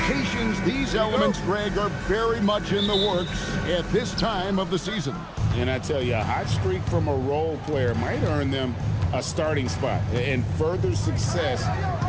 rotations. These elements, Greg, are very much in the works at this time of the season. And I tell you, a hot streak from a role player might earn them a starting spot. And further success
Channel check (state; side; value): identical; both; correlation 1.00